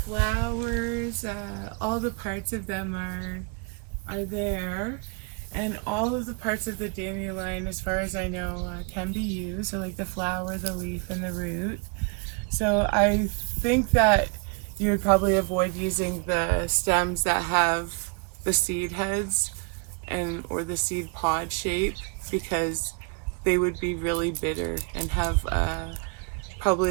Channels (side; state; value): left; quieter; 34.2 dB